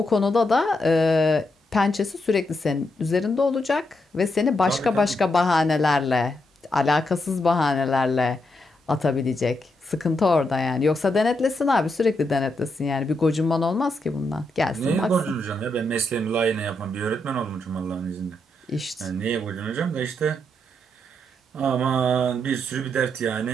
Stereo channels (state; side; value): normal; both; correlation 0.81